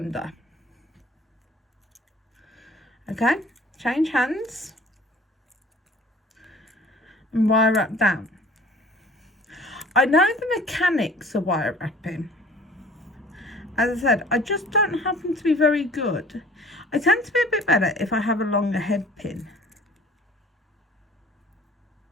Okay, change hands, and wire wrap down. I know the mechanics of wire wrapping. As I said, I just don't happen to be very good. I tend to be a bit better if I have a longer head pin.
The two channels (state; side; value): normal; both; correlation 0.49